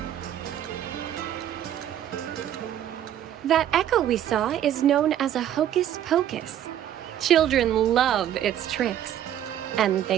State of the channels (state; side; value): quieter; left; 10.9 dB